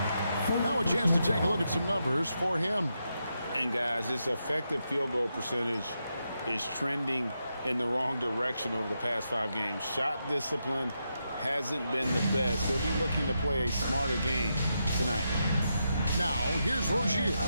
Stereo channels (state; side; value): inverted; both; correlation -0.84